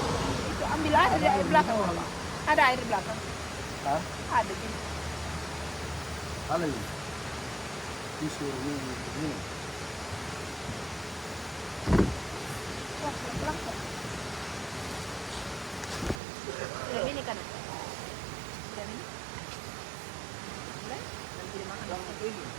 Itu ambil aja dari air belakang. Ada air belakang. Ha? Ada gitu. Ano yun? Piso yun. Wah, pelan-pelan kok. Ini kan. Dan ini. Boleh? Nanti dimakan.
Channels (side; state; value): left; drops out; at 16.2 s